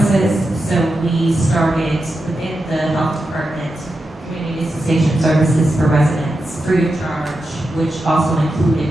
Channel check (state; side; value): normal; both; correlation 0.88